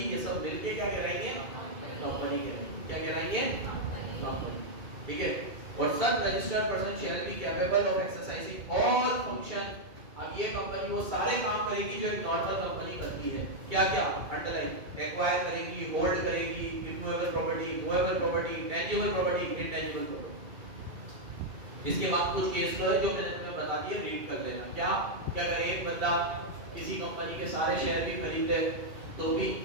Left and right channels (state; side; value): late; left; 2.3 ms